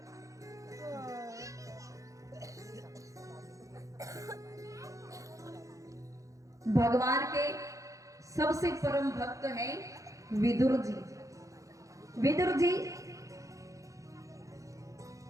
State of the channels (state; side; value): late; left; 0.16 ms